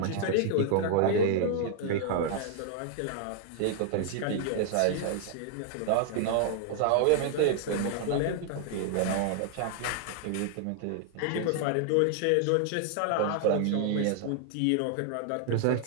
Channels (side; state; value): both; different; correlation 0.00